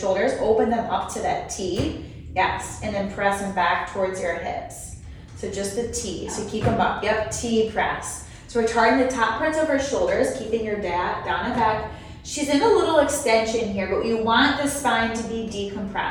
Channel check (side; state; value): both; identical; correlation 1.00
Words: open them up to that T, yes, and then press them back towards your hips. So just the T, so keep them up, yep, T press. So we're targeting the top parts of her shoulders, keeping your down and back. She's in a little extension here, but you want the spine to be